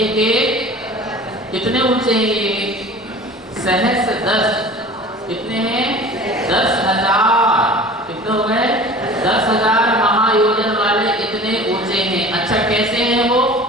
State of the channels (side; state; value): both; normal; correlation 0.41